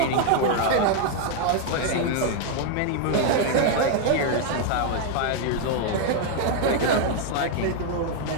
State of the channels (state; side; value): different; both; correlation 0.00